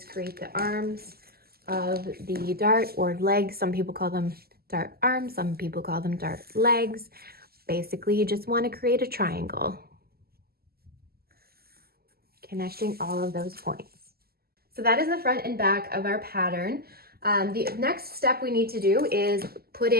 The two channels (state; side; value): late; left; 0.45 ms